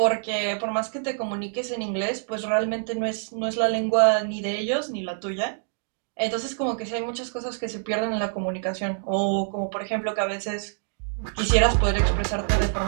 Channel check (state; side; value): silent; left; digital silence